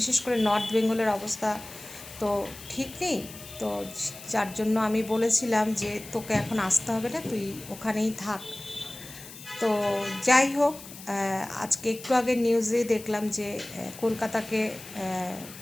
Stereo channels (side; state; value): left; noise; hiss, 15 dB below the sound